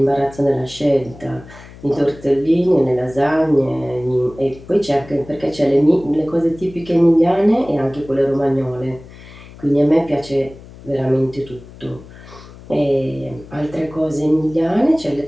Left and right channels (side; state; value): left; noise; hum, 19 dB below the sound